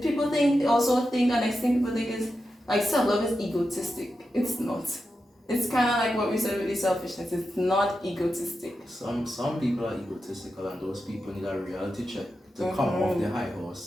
also think, and next thing people think is, like, self-love is egotistic. It's not. It's kind of like what we said with the selfishness. It's not egotistic. Some people are egotistical, and those people need a reality check to come off the high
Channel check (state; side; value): normal; both; correlation 0.90